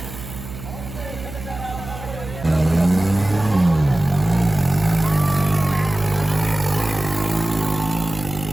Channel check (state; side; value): noise; right; hum, 12 dB below the sound